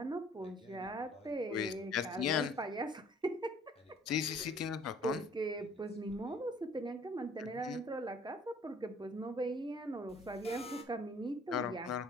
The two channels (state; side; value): normal; both; correlation 0.56